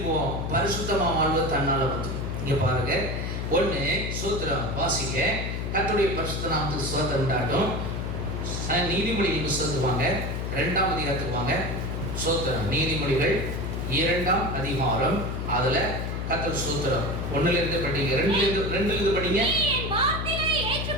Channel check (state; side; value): noise; left; hum, 3 dB below the sound